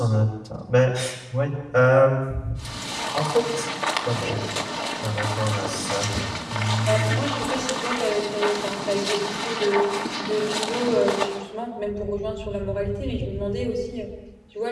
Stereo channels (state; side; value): identical; both; correlation 1.00